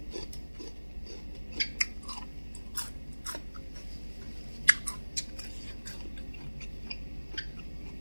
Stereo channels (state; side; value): inverted; both; correlation -1.00